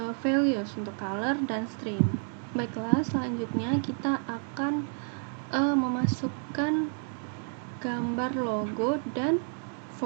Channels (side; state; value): left; silent; 55 dB below the other